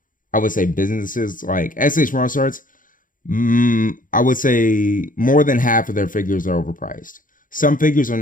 I would say businesses like SH Martial Arts. I would say more than half of their figures are overpriced. Some figures are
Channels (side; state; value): right; late; 0.39 ms